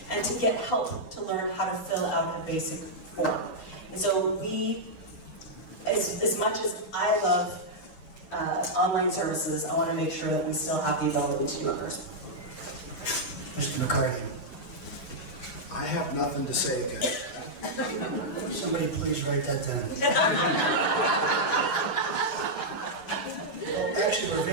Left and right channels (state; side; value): late; right; 8.1 ms